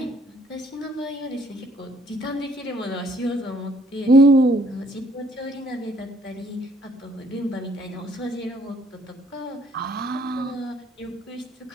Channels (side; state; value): both; normal; correlation 0.63